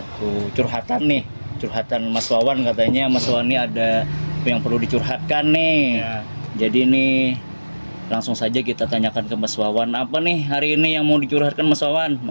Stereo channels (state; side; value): inverted; both; correlation -1.00